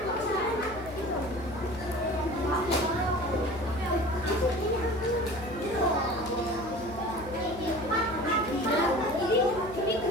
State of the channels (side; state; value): left; noise; hum, 15 dB below the sound